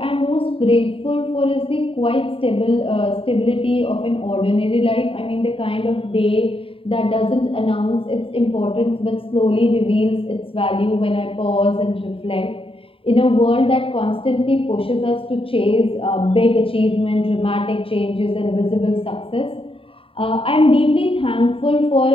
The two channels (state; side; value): late; right; 0.27 ms